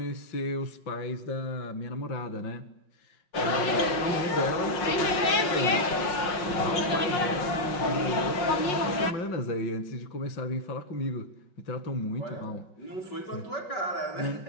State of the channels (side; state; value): right; late; 5.6 ms